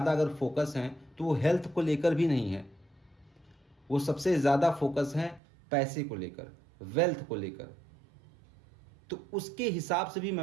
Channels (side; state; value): left; drops out; at 5.4 s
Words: अगर फोकस है तो वो हेल्थ को लेकर भी नहीं है, वो सबसे ज़्यादा फोकस है पैसे को लेकर, वेल्थ को लेकर। तो उसके हिसाब से भी